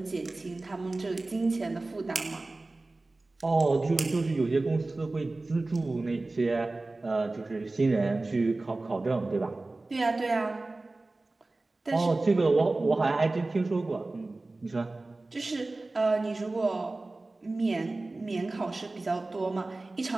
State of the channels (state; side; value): quieter; left; 3.1 dB